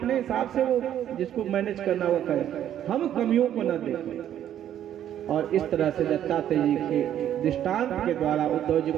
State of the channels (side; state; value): left; quieter; 10.8 dB